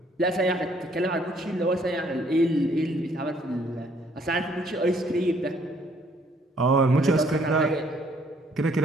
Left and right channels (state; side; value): normal; both; correlation 0.64